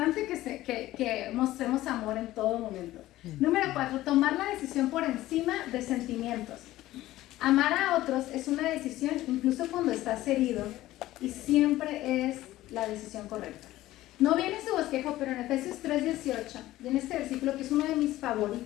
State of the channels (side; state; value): right; quieter; 15.8 dB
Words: que mostremos amor en todo momento. Número 4, tomar la decisión por encima de sentimientos. Amar a otros es una decisión incluso cuando estás herido y siempre es la decisión correcta. No viene su bosquejo, pero en Efesios 3:18, y en este versículo que es uno de mis